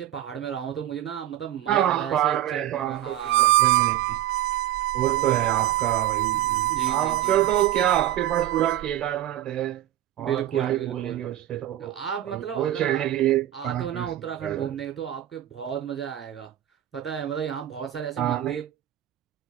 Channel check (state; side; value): quieter; left; 12.8 dB